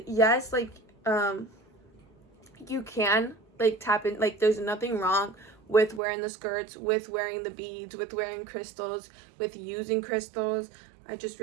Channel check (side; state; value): left; drops out; at 6.0 s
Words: yes, like, you can, like, tap in, like, there's nothing wrong with wearing the skirts, with wearing the beads, with wearing crystals, with using crystals. I just